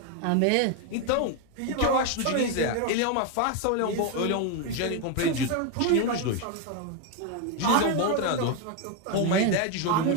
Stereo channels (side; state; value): both; different; correlation 0.02